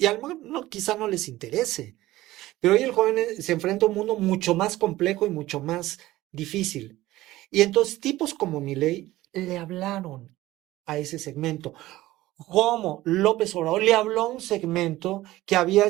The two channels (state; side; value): quieter; left; 16.7 dB